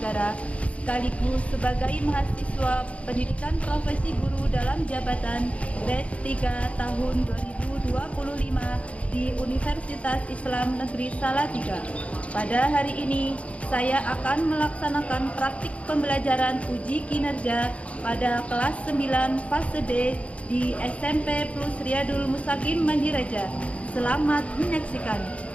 sekaligus sebagai mahasiswa pendidikan profesi guru dalam jabatan grade 3 tahun 2025 di Universitas Islam Negeri Salatiga. Pada hari ini saya akan melaksanakan praktik pembelajaran uji kinerja pada kelas 9 fase D di SMP Plus Riyadul Mustaqim Mandireja. Selamat menyaksikan.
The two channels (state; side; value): late; right; 0.064 ms